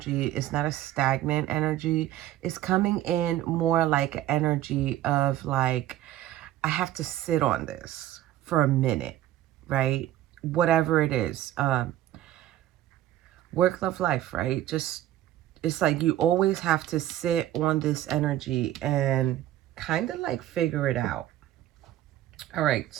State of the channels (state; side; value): quieter; left; 13.6 dB